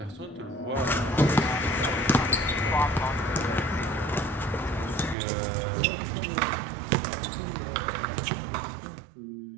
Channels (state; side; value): drops out; left; at 5.2 s